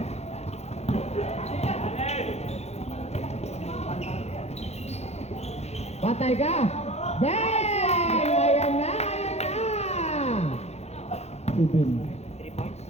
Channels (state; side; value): late; right; 0.31 ms